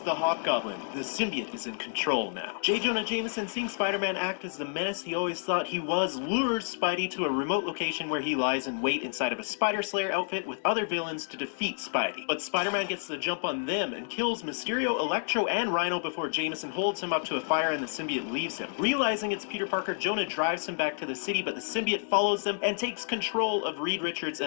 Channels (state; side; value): silent; right; digital silence